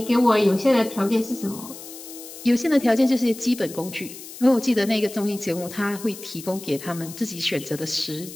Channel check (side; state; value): left; noise; hiss, 14 dB below the sound